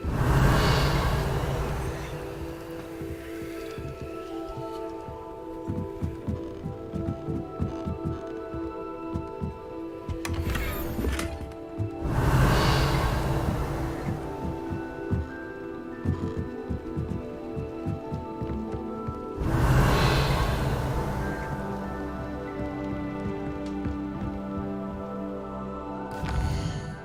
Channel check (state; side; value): identical; both; correlation 1.00